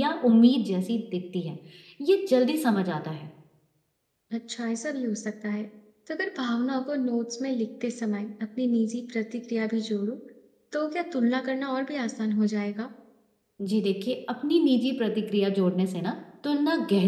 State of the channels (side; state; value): both; identical; correlation 1.00